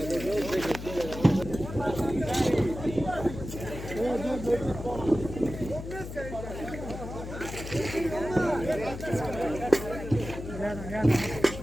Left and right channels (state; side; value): noise; left; hum, 9 dB below the sound